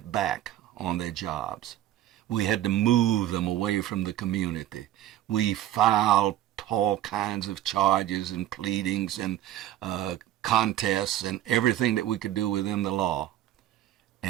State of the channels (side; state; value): left; quieter; 13.0 dB